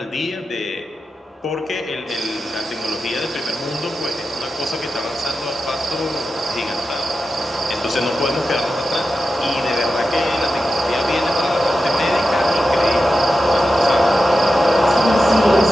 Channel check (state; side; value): normal; both; correlation 0.91